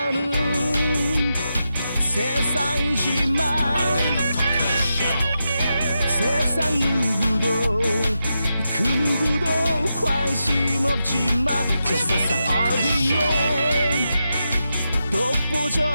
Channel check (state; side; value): inverted; both; correlation -0.87